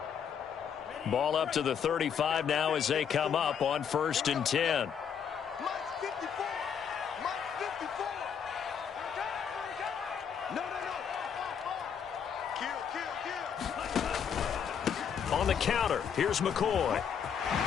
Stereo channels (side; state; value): right; quieter; 7.6 dB